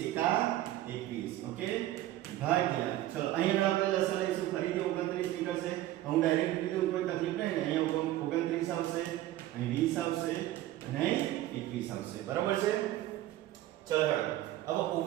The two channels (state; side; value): quieter; left; 14.6 dB